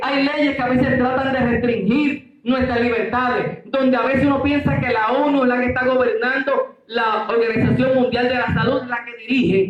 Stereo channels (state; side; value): identical; both; correlation 1.00